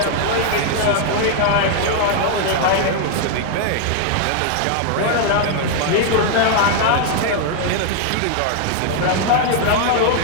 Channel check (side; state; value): both; different; correlation 0.00